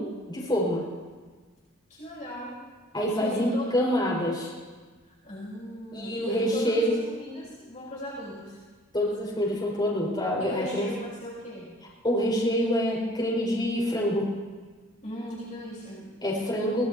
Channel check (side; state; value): both; normal; correlation 0.54